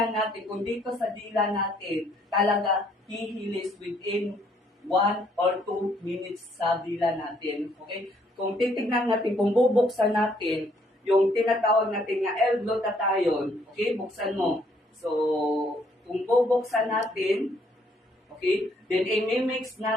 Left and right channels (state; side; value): normal; both; correlation 0.67